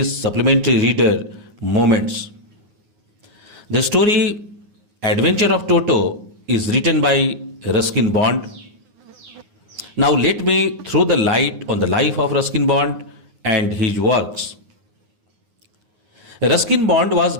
supplementary reader Moments. The story Adventure of Toto is written by Ruskin Bond. Now let me throw the light on the life of Ruskin Bond and his works. Ruskin Bond was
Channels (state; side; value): late; left; 9.5 ms